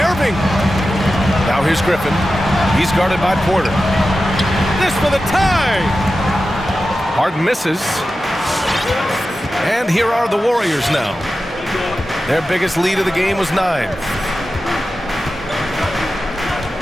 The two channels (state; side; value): normal; both; correlation 0.93